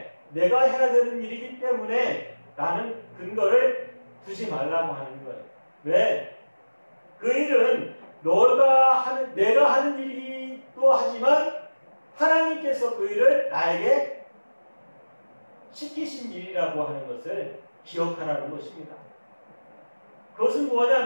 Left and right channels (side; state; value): both; inverted; correlation -1.00